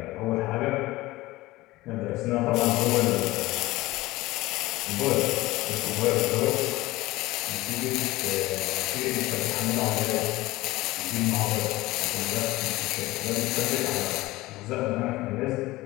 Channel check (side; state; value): right; quieter; 19.0 dB